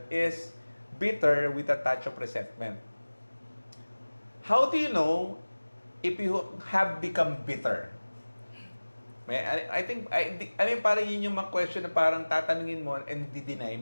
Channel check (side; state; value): both; inverted; correlation -1.00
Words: is bitter with a touch of resentment. How do you know if you have become bitter? I think, parang yun yung mga question na parang tatanungin mo and di-deny